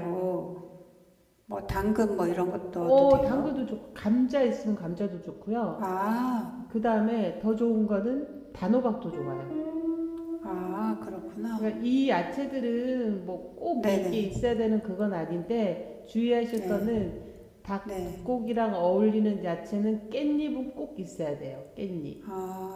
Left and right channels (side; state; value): both; identical; correlation 1.00